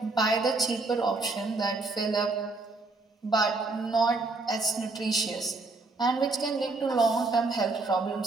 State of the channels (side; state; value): left; quieter; 3.5 dB